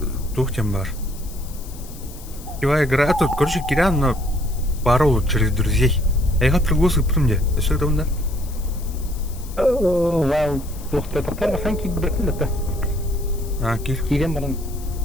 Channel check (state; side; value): noise; left; hiss, 18 dB below the sound